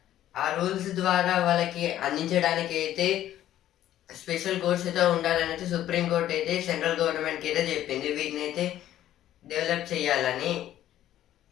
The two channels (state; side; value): quieter; right; 12.5 dB